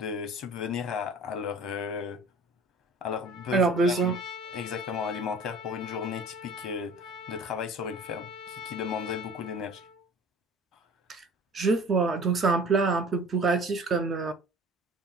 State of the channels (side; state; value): both; normal; correlation 0.44